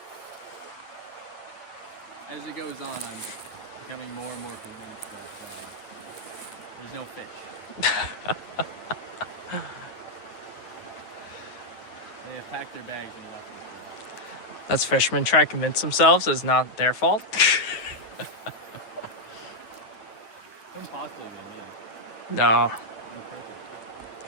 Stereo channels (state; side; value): late; right; 9.4 ms